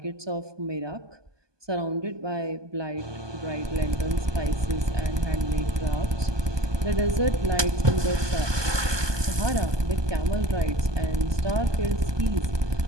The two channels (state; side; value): late; left; 1.2 ms